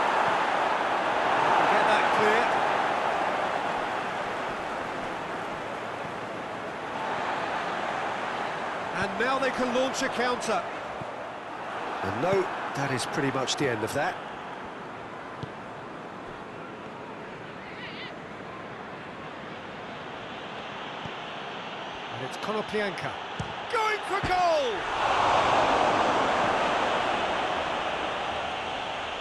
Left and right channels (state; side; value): identical; both; correlation 1.00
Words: Get that clear. And now they can launch a counter. And no, that is pretty much the end of that. And it's Konoplyanka going for goal!